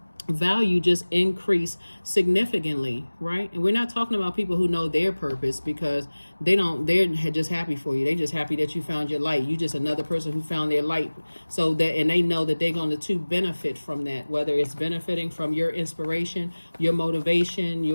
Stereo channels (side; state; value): both; inverted; correlation -1.00